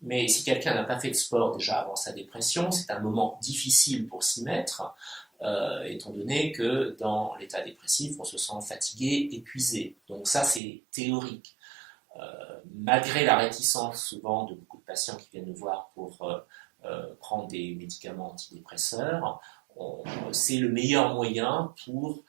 Mais si quelqu'un n'a pas fait de sport déjà avant sa dépression, c'est un moment difficile pour s'y mettre, étant donné que dans l'état dépressif, on se sent fatigué, épuisé. Donc ça, c'est théorique. Malgré la réticence souvent de beaucoup de patients qui viennent nous voir pour prendre des médicaments antidépresseurs, c'est le meilleur moyen pour,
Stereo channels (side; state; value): left; drops out; at 10.6 s